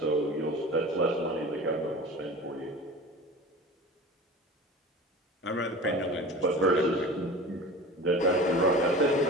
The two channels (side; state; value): both; normal; correlation 0.36